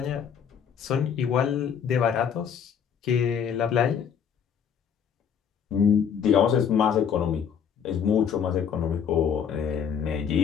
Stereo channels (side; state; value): right; quieter; 7.7 dB